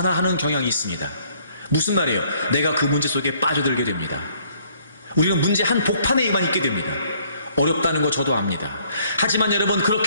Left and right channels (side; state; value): both; inverted; correlation -0.62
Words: 경향이 있습니다. 무슨 말이에요? 내가 그 문제 속에 빠져들게 됩니다. 우리는 문제 한 복판에만 있게 됩니다. 어렵다는 거 저도 압니다. 하지만 여러분,